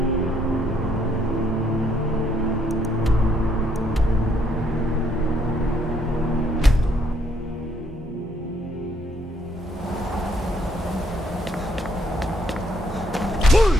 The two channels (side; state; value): both; normal; correlation 0.70